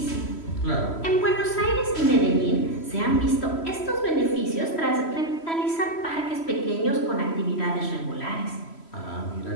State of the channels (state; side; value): late; right; 3.1 ms